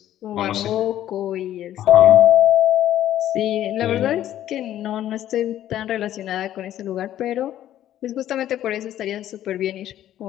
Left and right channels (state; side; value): quieter; right; 12.2 dB